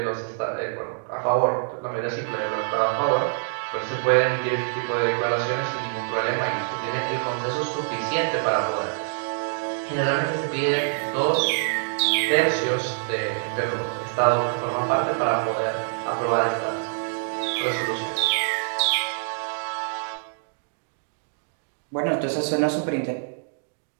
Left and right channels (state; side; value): silent; left; digital silence